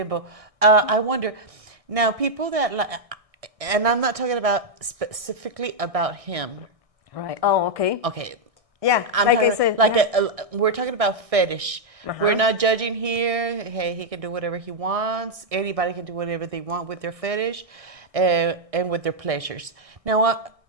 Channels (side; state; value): left; late; 1.6 ms